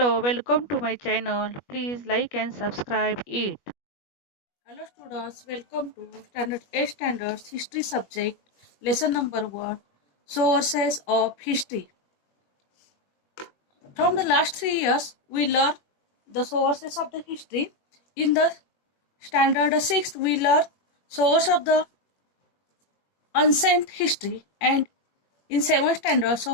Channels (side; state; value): right; late; 21 ms